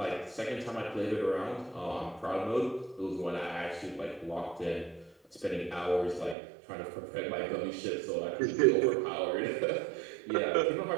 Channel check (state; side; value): drops out; left; at 6.4 s